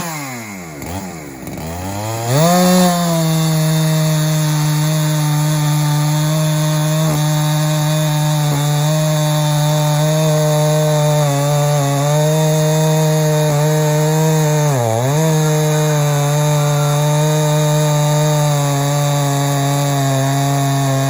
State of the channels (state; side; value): identical; both; correlation 1.00